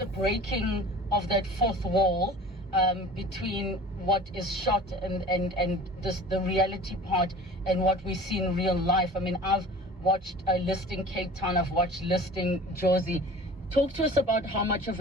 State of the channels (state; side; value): normal; both; correlation 0.42